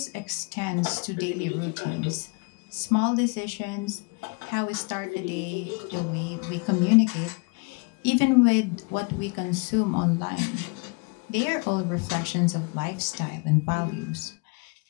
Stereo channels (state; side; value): quieter; right; 32.9 dB